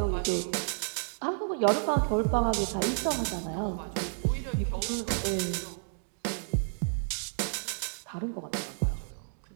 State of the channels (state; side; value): silent; left; digital silence